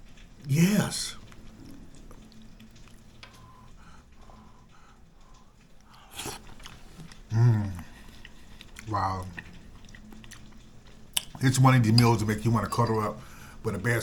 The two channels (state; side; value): identical; both; correlation 1.00